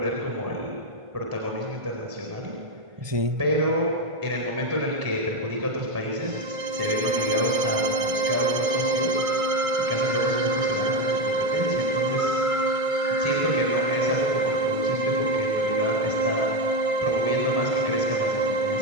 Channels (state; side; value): late; left; 1.5 ms